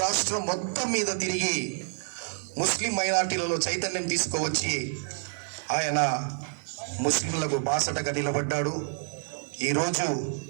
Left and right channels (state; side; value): silent; left; digital silence